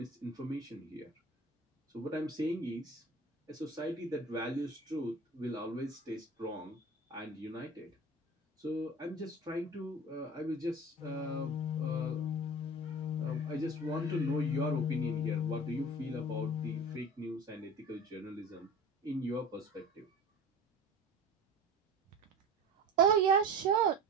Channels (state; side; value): normal; both; correlation 0.36